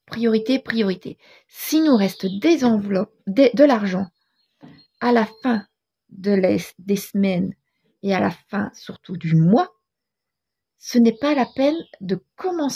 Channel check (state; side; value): identical; both; correlation 1.00